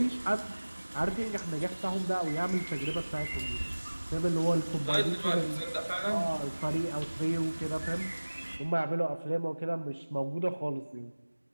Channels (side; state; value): both; inverted; correlation -1.00